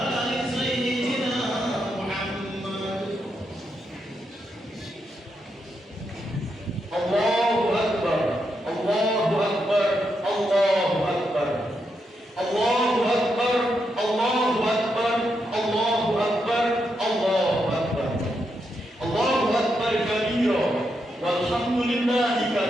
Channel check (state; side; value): normal; both; correlation 0.82